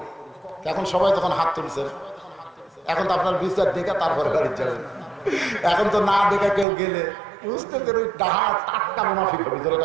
এখন সবাই তখন হাত তুলছেন। এখন তো আপনার বিচার দেখে তারপরে বাড়ি যাবেন। এখন তো না দেখে কেউ গেলে বুঝতেছেন ওই ডাহা টাটকা মুনাফিক হবে।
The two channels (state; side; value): drops out; left; at 6.7 s